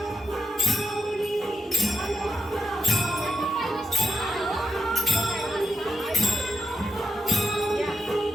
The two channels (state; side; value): normal; both; correlation 0.83